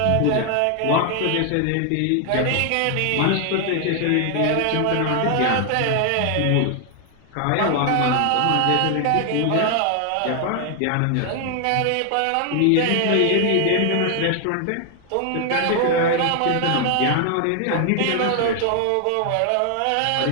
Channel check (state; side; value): different; both; correlation 0.00